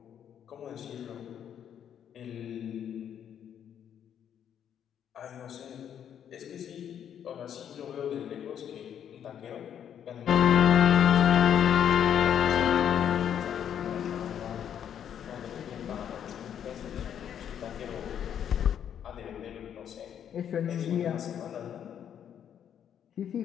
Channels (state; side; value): quieter; right; 9.2 dB